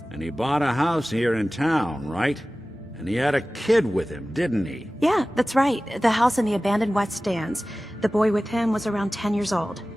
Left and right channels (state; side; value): normal; both; correlation 0.97